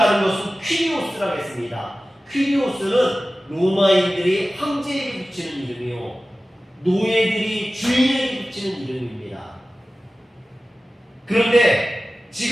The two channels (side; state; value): both; normal; correlation 0.96